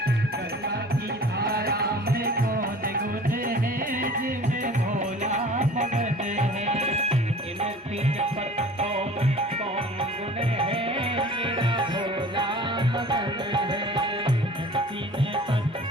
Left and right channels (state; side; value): normal; both; correlation 0.45